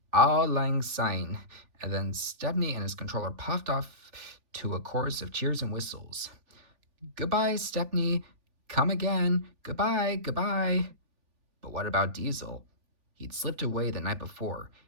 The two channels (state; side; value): late; left; 3.4 ms